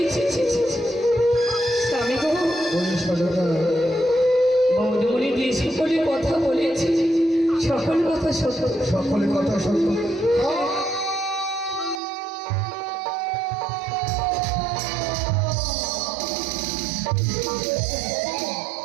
ছি, ছি, ছি, ছি। স্বামী গো, ওই সারদা, বৌদমণি যে সকলে কথা বলেছি সকল কথা সত্য। সকলে কথা সত্য।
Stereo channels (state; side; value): drops out; left; at 12.0 s